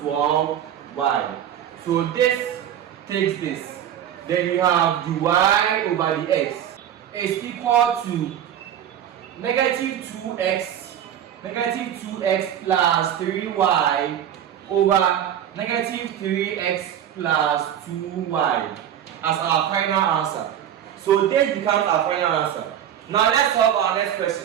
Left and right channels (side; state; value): left; quieter; 10.2 dB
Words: So this takes this. Then you have the y over the x is equal to negative 2x plus 3y over negative 3x plus 2y as our final answer. So this becomes our final answer. Now let's solve our next